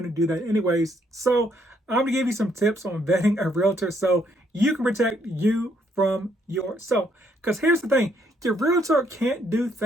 to do that anyways. So I'm going to give you some tips on vetting a realtor so you can protect you from yourself. Because here's the thing, your realtor can't do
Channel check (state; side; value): normal; both; correlation 0.71